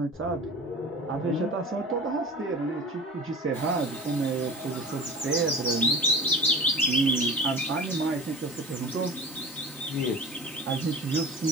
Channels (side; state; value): both; normal; correlation 0.37